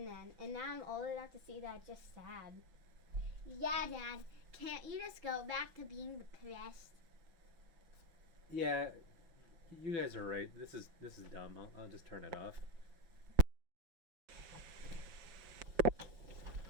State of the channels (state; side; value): late; left; 6.0 ms